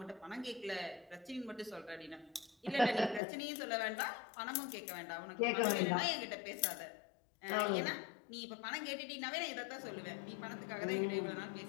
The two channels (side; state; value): right; drops out; at 3.2 s